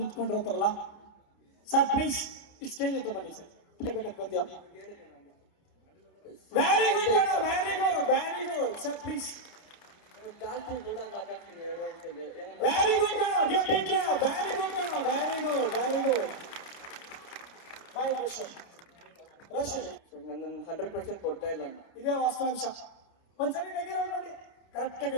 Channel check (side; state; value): right; late; 30 ms